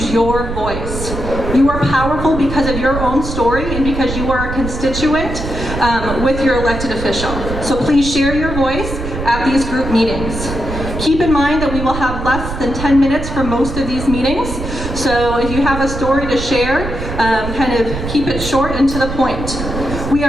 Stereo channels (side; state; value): right; noise; rumble, 6 dB below the sound